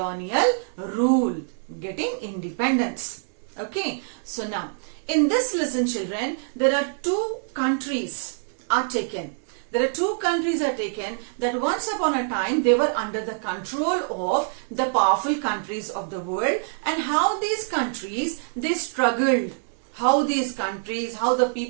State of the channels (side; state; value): left; silent; 62 dB below the other